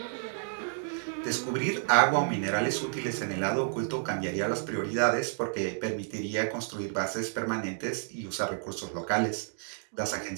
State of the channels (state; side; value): silent; left; digital silence